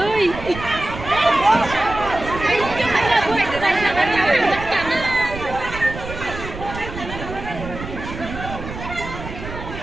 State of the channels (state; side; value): noise; right; rumble, 10 dB below the sound